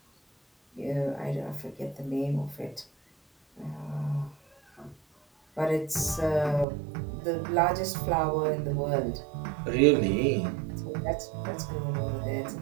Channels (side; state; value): left; drops out; at 6.7 s